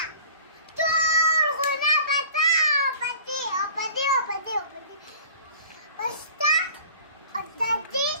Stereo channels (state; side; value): inverted; both; correlation -0.45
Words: ټول غونه به تا او په دې او په دې او په دې او په دې په ستا او د دې